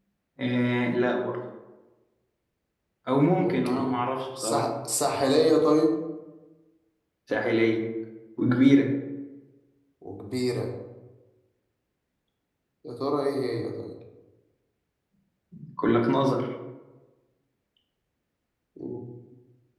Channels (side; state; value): both; identical; correlation 1.00